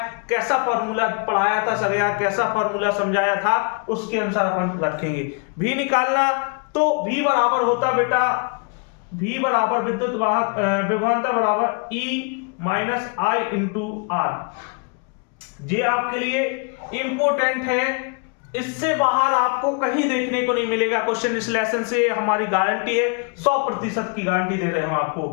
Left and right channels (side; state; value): right; quieter; 36.5 dB